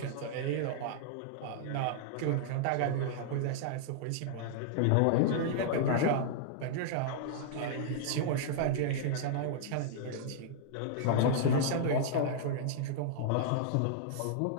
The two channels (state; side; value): different; both; correlation -0.01